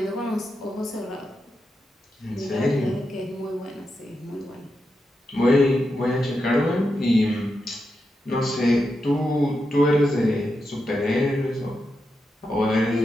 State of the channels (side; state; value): both; normal; correlation 0.87